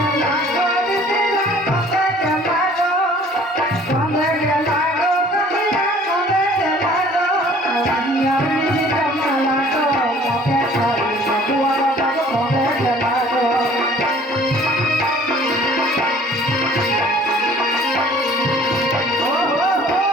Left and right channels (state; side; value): normal; both; correlation 0.53